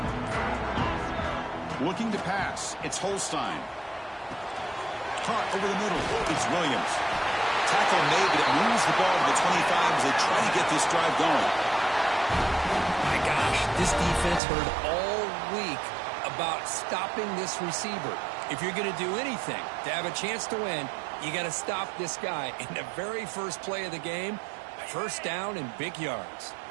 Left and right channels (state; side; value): drops out; left; at 14.4 s